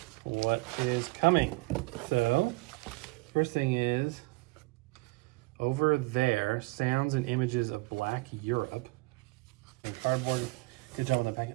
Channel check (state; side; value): quieter; left; 24.9 dB